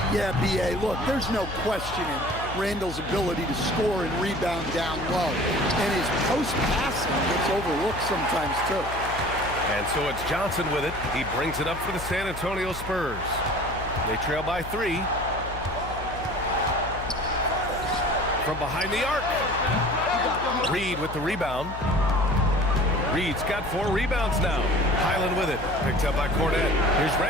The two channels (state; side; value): noise; left; hum, 11 dB below the sound